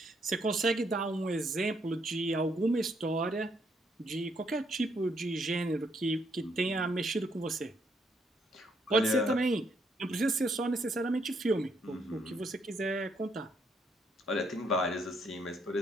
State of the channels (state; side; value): normal; both; correlation 0.73